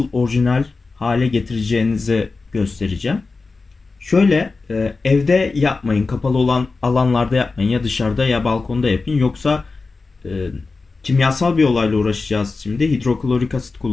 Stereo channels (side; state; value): right; quieter; 4.0 dB